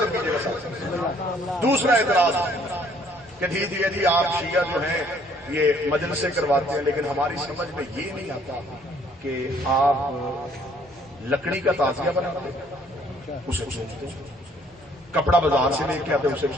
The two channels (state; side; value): normal; both; correlation 0.62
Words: کیجیے گا. دوسرا اعتراض کہ ٹھیک ہے جی آپ شیعہ جو ہیں یہ مجلسیں کرواتے ہیں, لیکن ہماری سمجھ میں یہ نہیں آتا کہ آپ لکڑی کا تعزیہ بناتے ہیں, اسے سوچتے ہیں, کپڑا بازار سے لے کے آتے اسے